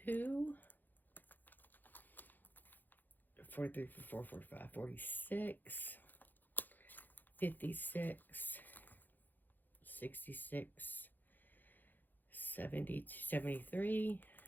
43, 44, 45, 46, 56, 66, 70, 73,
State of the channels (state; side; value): late; right; 0.087 ms